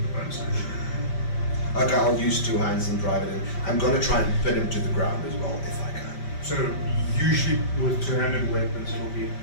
the bonus action. Okay, I'll use 2 hands and drive it in. I'm gonna try and pin him to the ground as well, if I can. So usually with two-handed weapons, it'll be a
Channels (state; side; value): late; right; 5.1 ms